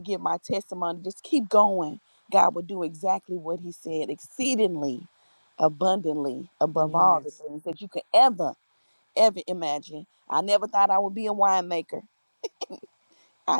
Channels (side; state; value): both; inverted; correlation -1.00